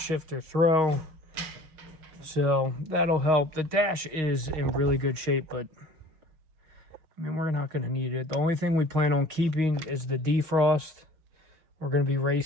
throw, so that'll help. The dash is in really good shape, but I mean, we're not going to need it. The only thing we plan on keeping is the defrost. We're going to be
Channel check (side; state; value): left; late; 6.4 ms